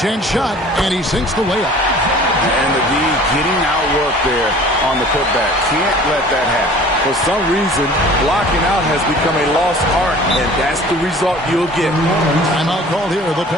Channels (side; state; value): both; normal; correlation 0.47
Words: chance shot, and he sinks the layup. And the D getting outworked there on the putback. Can't let that happen. For some reason, blocking out has become a lost art, and that's the result you'll get. Timeout called here. The